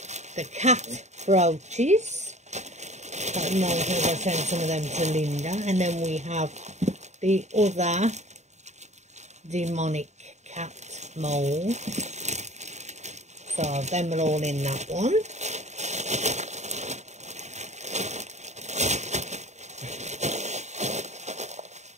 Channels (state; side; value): late; left; 0.33 ms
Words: the cat brooches. I don't know if I'll send some of them to Linda. And then we have the other demonic cat mould. So them are all in that one.